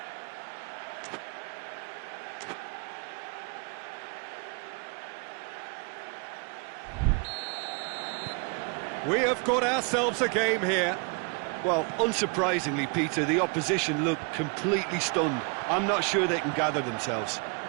We have got ourselves a game here. Well, unsurprisingly, Peter, the opposition look completely stunned. I'm not sure they can gather themselves.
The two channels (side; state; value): left; quieter; 34.3 dB